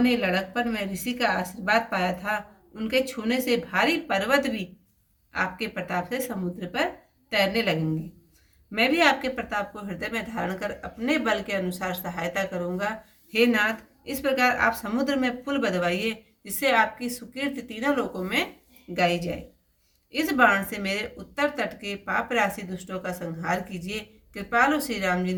लड़कपन में ऋषि का आशीर्वाद पाया था। उनके छूने से भारी पर्वत भी आपके प्रताप से समुद्र पर तैरने लगेंगे। मैं भी आपके प्रताप को हृदय में धारण कर अपने बल के अनुसार सहायता करूंगा। हे नाथ, इस प्रकार आप समुद्र में पुल बंधवाइए, जिससे आपकी सुकीर्ति तीनों लोकों में गाई जाए। इस बाण से मेरे उत्तर तट के पाप राशि दुष्टों का संहार कीजिए। कृपालु श्री राम जी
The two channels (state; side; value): identical; both; correlation 1.00